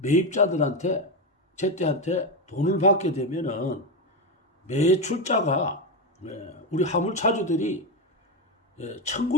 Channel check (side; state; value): both; normal; correlation 0.11